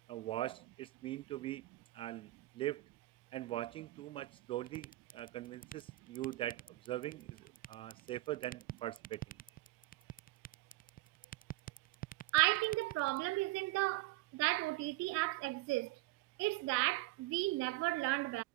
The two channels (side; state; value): left; quieter; 19.5 dB